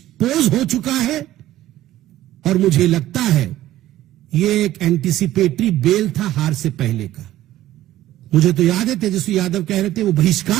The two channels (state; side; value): quieter; left; 14.3 dB